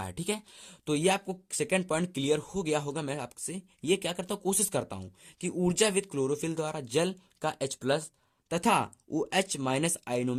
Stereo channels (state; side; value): identical; both; correlation 1.00